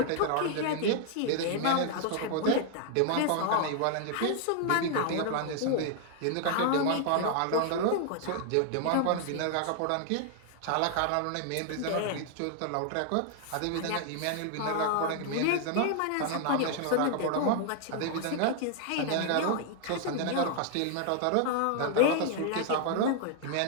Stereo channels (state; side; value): different; both; correlation 0.00